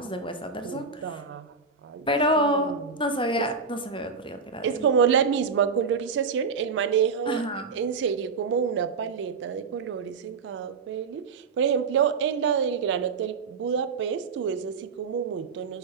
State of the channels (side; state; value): left; quieter; 5.0 dB